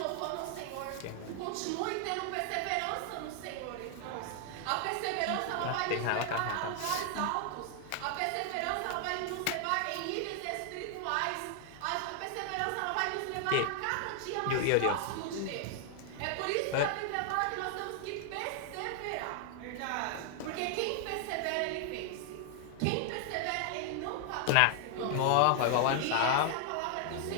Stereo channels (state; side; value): different; both; correlation 0.00